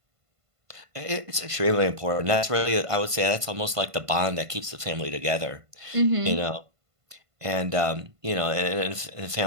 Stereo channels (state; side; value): late; left; 1.5 ms